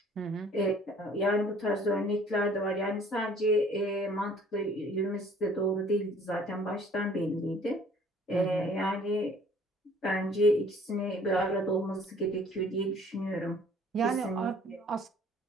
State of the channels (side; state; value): both; normal; correlation 0.55